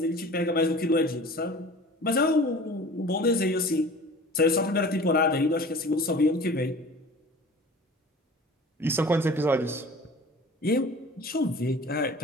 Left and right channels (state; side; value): normal; both; correlation 0.42